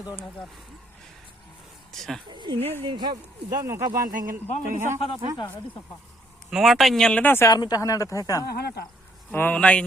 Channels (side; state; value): both; normal; correlation 0.68